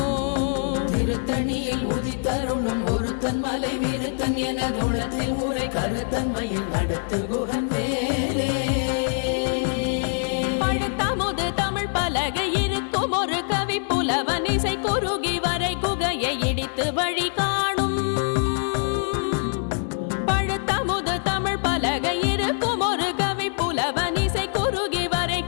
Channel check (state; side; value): silent; right; 62 dB below the other